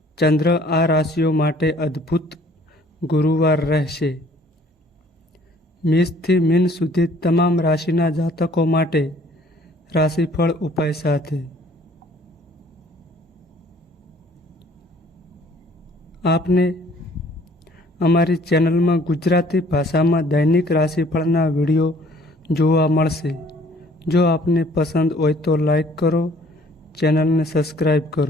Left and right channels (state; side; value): normal; both; correlation 0.57